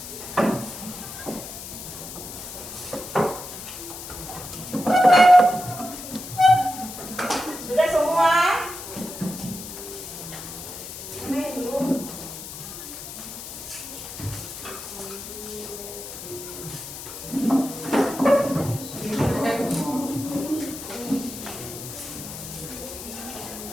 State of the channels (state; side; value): noise; left; hiss, 10 dB below the sound